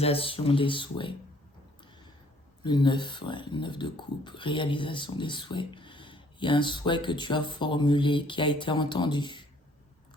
des souhaits. Le 9, ouais, le 9 de coupe, réalisation des souhaits. Il y a un souhait que tu as formulé, qui a été entendu.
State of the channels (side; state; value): both; normal; correlation 0.61